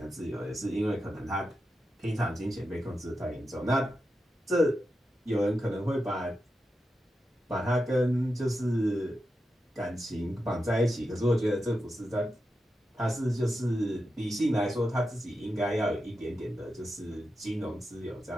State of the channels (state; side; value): normal; both; correlation 0.89